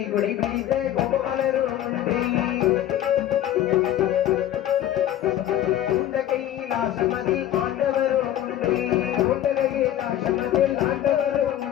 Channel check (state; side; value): quieter; right; 12.0 dB